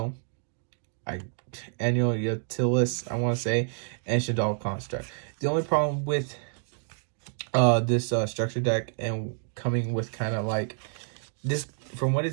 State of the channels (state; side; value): silent; left; digital silence